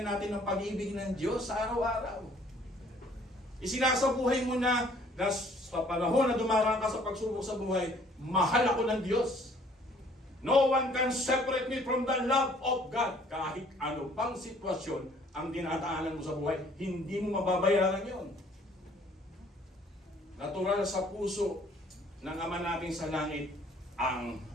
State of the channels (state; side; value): normal; both; correlation 0.58